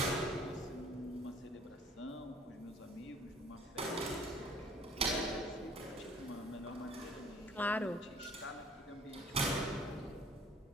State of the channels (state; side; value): normal; both; correlation 0.53